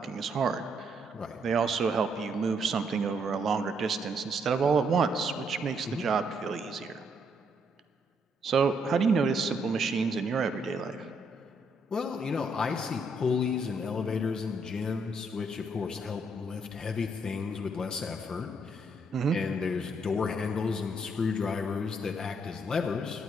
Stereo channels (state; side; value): normal; both; correlation 0.73